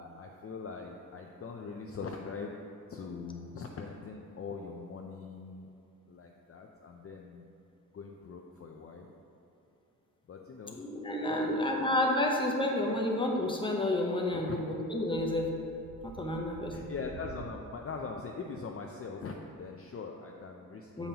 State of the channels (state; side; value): normal; both; correlation 0.31